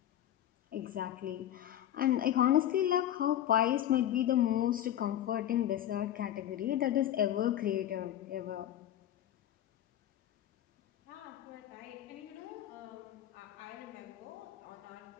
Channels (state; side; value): quieter; right; 11.7 dB